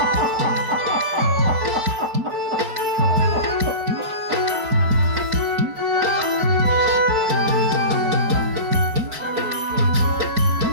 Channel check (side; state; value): left; late; 4.5 ms